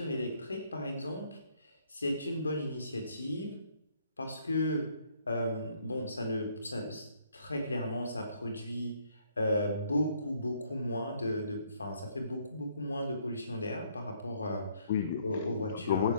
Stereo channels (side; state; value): both; inverted; correlation -0.67